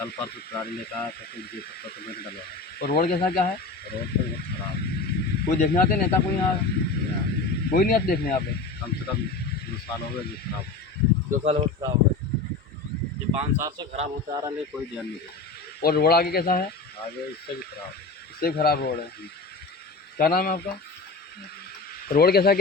परसों गाड़ी लेकर आया था तो ये पत्थर तो मैंने डलवाया। और रोड कैसा क्या है? रोड तो बहुत खराब। कोई देखने आते नेता? कोई यहाँ कोई नहीं आते देखने यहाँ पे? कम से कम 2 साल हो गए ये खराब। 2 साल और खराब है। ये 5 साल से खराब होता आ रहा है, कोई ध्यान नहीं देता। और रोड आगे कैसा है? आगे इससे भी खराब। इससे खराब रोड है। क्या नाम है आपका? रोड कैसा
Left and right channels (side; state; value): right; quieter; 3.9 dB